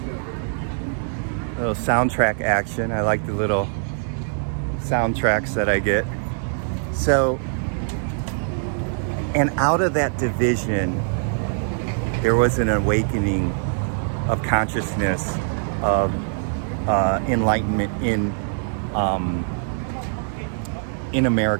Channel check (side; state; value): left; silent; 63 dB below the other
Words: soundtrack action. I like the little soundtracks that I get. So, and out of that division, there was an awakening of consciousness, of enlightenment in